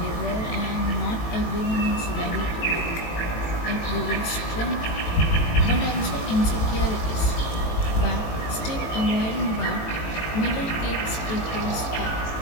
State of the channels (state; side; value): late; right; 18 ms